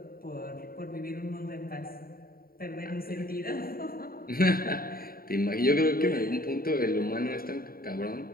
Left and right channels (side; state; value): right; late; 0.43 ms